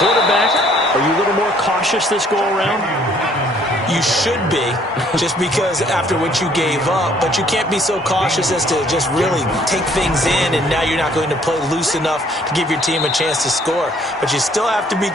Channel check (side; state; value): both; normal; correlation 0.61